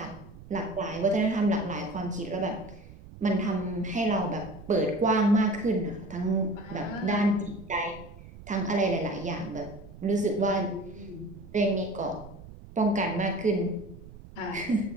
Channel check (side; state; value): right; noise; rumble, 17 dB below the sound